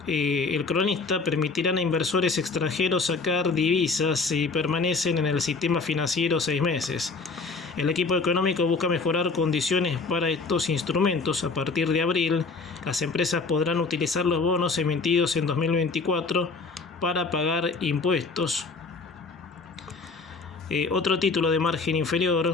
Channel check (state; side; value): quieter; right; 4.2 dB